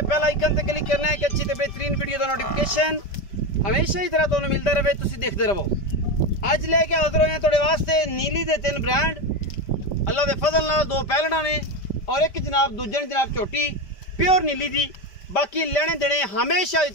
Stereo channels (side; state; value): right; late; 5.1 ms